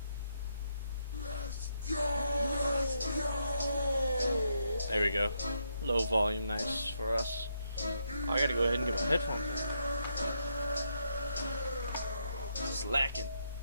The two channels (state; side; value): inverted; both; correlation -0.78